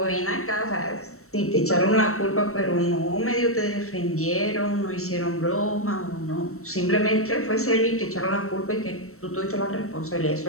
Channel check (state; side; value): late; right; 0.63 ms